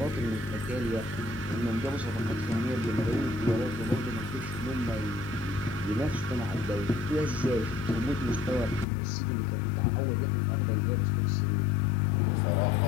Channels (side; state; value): right; drops out; at 8.8 s